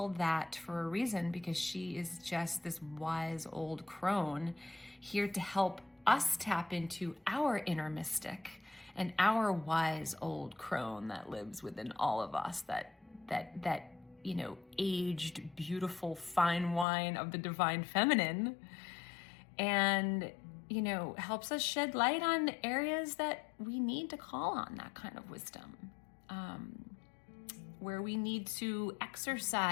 that for a reason because she is just this wise old crone here to help us tap into our inner mystic and our wise old crone that lives within all of us, that you know, aged, beautiful, fine wine of the divine feminine, and, you know, helps us shed light on areas that we need to call on that kind of wisdom, where we need to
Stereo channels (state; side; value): drops out; right; at 16.9 s